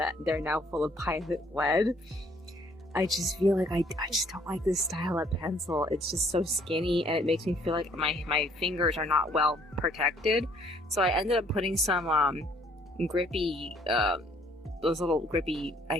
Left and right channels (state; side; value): normal; both; correlation 0.62